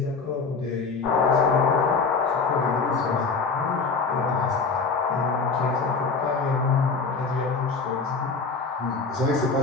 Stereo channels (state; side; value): quieter; right; 4.6 dB